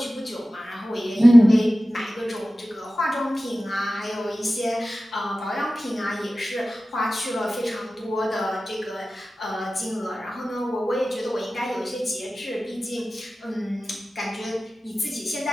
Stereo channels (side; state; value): both; normal; correlation 0.96